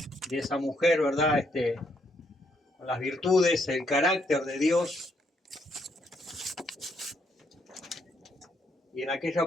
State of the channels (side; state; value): both; normal; correlation 0.74